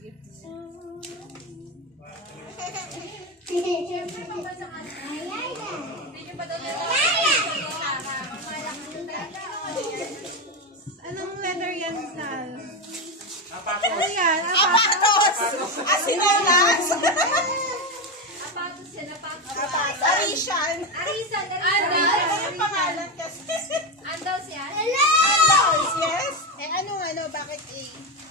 Anong letter yan, Sal? Ano yan? Apatos! Asinalas! Apatos yan, apatos. Arishan! Arisan, Ano yung pangalan kasi? Andaw siya? Andaws, yes? Eh, ano, bakit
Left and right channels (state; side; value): normal; both; correlation 0.13